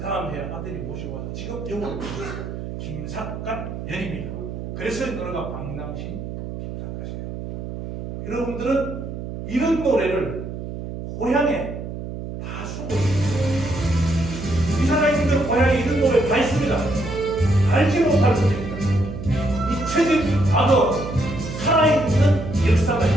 해 아들이 모시고 와서 지금 영원히 모셨어요. 김삿갓 년입니다. 그래서 이 노래가 박낭신 김삿갓이에요. 여러분들은 이런 노래를 고향에 다 쓰고 있어요. 이 사장님들 고향에 이런 노래 다 있습니다. 알지 못할 뿐입니다. 잊혀진 과거, 살아있는 역사가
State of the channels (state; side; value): noise; right; hum, 8 dB below the sound